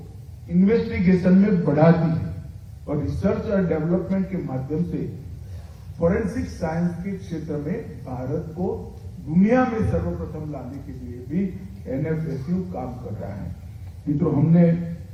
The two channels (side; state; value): both; identical; correlation 1.00